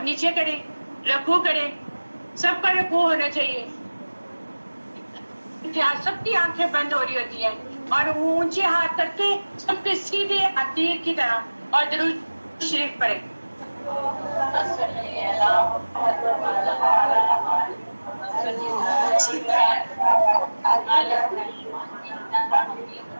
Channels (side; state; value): both; inverted; correlation -1.00